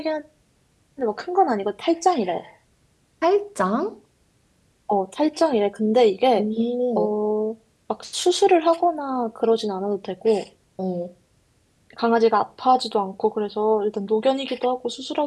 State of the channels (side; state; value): both; identical; correlation 1.00